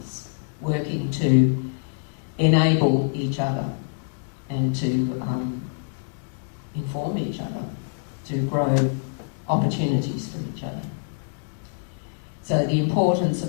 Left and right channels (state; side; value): silent; right; digital silence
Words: working to enable each other and to inform each other, to grow opportunities for each other. So the importance